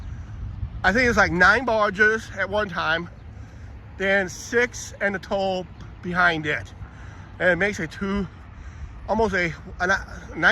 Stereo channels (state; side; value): identical; both; correlation 1.00